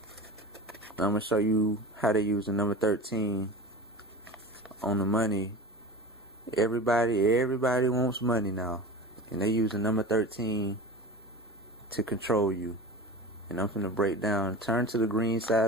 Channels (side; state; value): both; normal; correlation 0.33